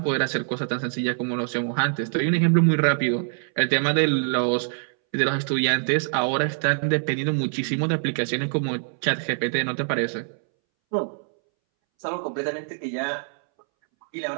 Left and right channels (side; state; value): left; silent; 62 dB below the other